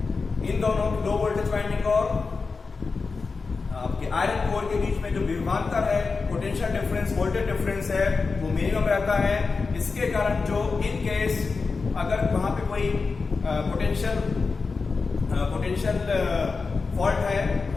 इन दोनों लो वोल्टेज वाइंडिंग और आपके आयरन कोर के बीच में जो विभवांतर है, पोटेंशियल डिफरेंस, वोल्टेज डिफरेंस है, वो मिनिमम रहता है। इसके कारण जो इन केस अगर वहां पे कोई पोटेंशियल फॉल्ट है,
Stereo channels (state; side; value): quieter; right; 4.5 dB